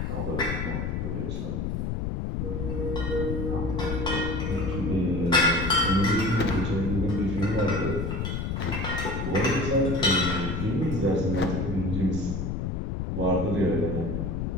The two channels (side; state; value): left; noise; rumble, 2 dB below the sound